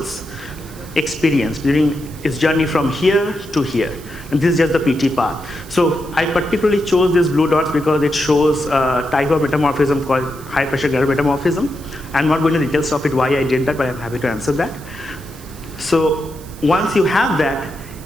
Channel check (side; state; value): right; noise; hiss, 20 dB below the sound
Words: experience during its journey from here to here. And this is just the PT path. So I particularly chose these blue dots because it shows a type of metamorphism called high pressure granular metamorphism. I'm not going into details of it, why I did that, but I'm happy to answer that. So once you have that,